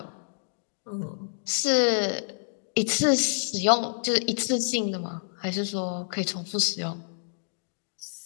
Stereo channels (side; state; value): right; silent; digital silence